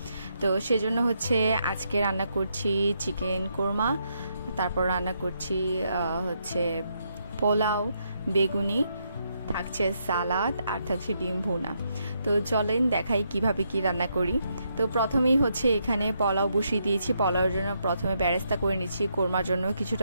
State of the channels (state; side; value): inverted; both; correlation -0.78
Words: তো সেজন্য হচ্ছে আজকে রান্না করছি চিকেন কোরমা, তারপর রান্না করছি হচ্ছে পোলাও, বেগুনি, থাকছে সালাদ আর থাকছে ডিম ভুনা। তো চলেন দেখাই কিভাবে কি রান্না করি। তো প্রথমেই হচ্ছে এখানে পোলাও বসিয়ে দিয়েছি। পোলাওর জন্য প্রথমে বেরেস্তা করে নিচ্ছি, কোরমার জন্য